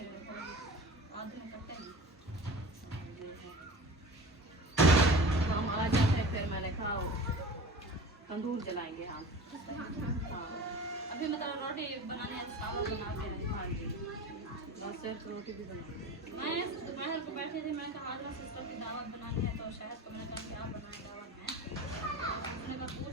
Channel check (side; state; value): both; normal; correlation 0.37